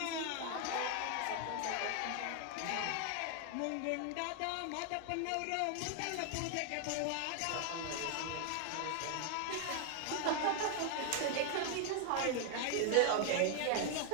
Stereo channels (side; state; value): both; different; correlation 0.00